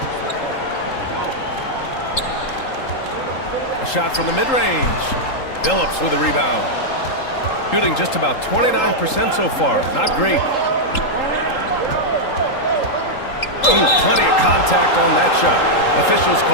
A shot from the mid-range. Billups with a rebound. Shooting just about 29% so far. Not great. Ooh, plenty of contact on that shot. Officials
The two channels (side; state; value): right; late; 3.8 ms